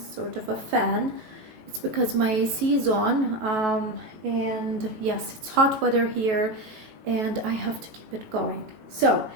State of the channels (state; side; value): late; left; 19 ms